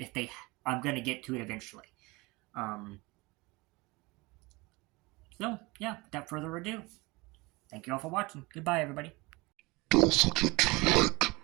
I'm gonna get to it eventually. So, yeah, without further ado, thank you all for watching. Goodbye, everybody. Don't forget to like,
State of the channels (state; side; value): quieter; left; 24.1 dB